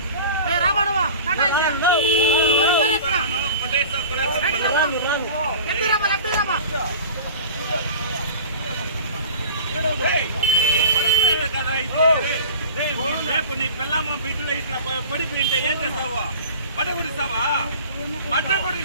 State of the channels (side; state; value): both; inverted; correlation -0.38